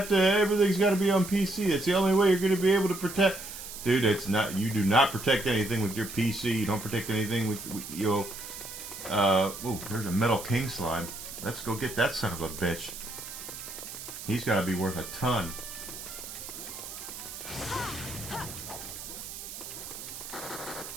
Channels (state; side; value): noise; right; hiss, 10 dB below the sound